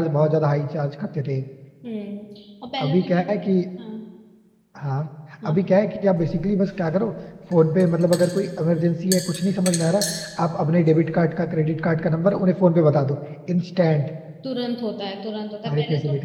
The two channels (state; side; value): identical; both; correlation 1.00